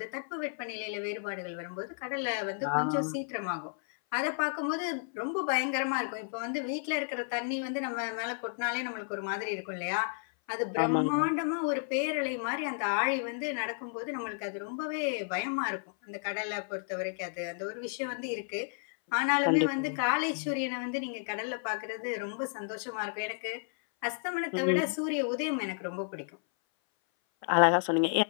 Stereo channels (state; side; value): silent; right; 56 dB below the other